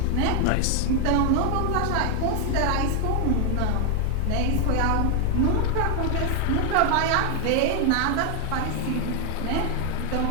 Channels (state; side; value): different; both; correlation 0.00